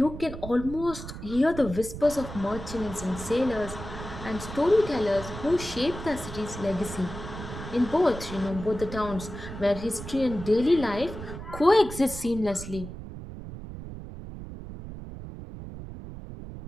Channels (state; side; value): noise; right; rumble, 10 dB below the sound